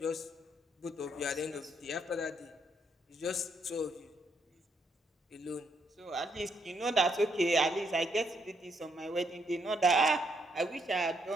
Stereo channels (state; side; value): normal; both; correlation 0.73